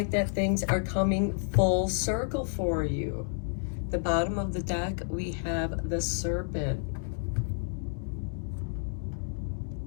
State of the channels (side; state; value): right; silent; digital silence